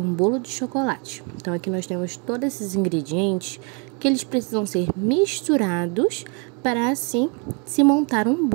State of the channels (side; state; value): left; quieter; 35.1 dB